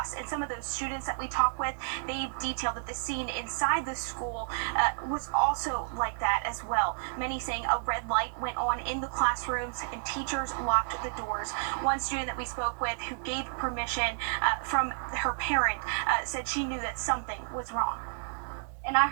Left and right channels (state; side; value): silent; left; digital silence